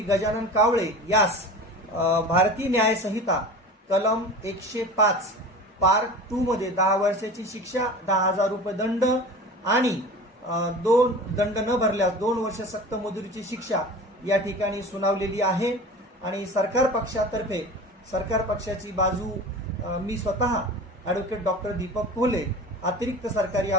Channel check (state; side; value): normal; both; correlation 0.35